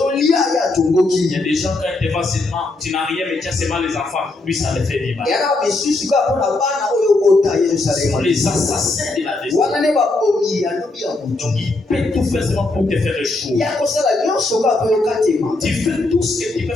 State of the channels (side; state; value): right; quieter; 3.0 dB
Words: y a des gens quand il va seulement, tu n'as rien mais tu as seulement les enfants, lui ça le fait mal. Ce sont les assassins de la destinée. Donc il peut tout faire seulement pour te faire échouer. Tu fais tout ce que tu peux